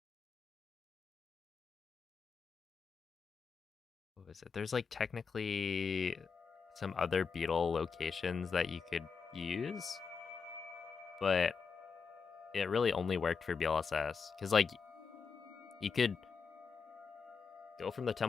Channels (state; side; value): quieter; right; 5.5 dB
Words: what was it? There's like technically some other beetle locations that you could use, but it really only worked for BLSS because like you could go from the